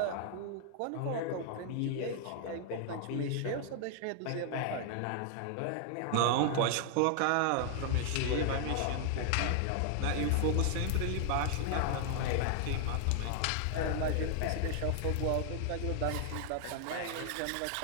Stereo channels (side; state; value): both; different; correlation 0.00